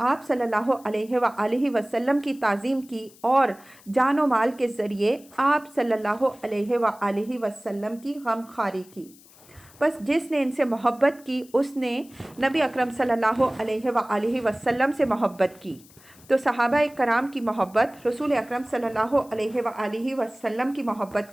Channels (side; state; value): left; noise; hiss, 25 dB below the sound